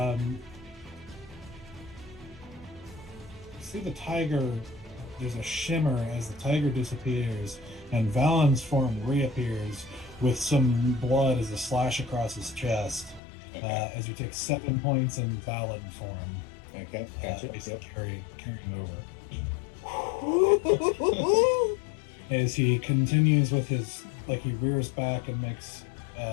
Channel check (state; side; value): drops out; right; at 13.2 s